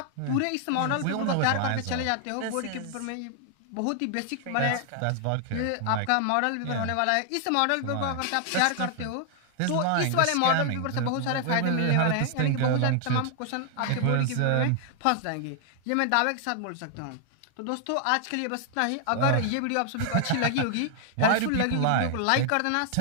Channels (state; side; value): different; both; correlation 0.00